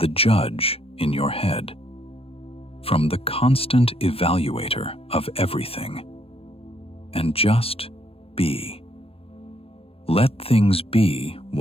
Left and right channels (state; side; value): late; right; 0.28 ms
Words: judge in your head, from the constant evaluator of everything, and just be. Let things be